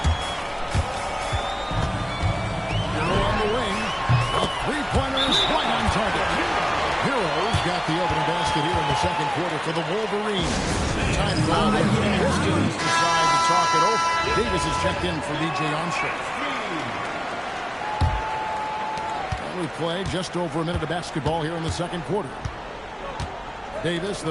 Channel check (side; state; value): both; identical; correlation 1.00